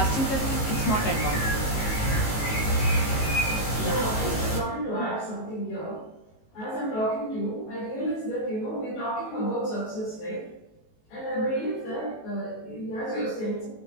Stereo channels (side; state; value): right; late; 19 ms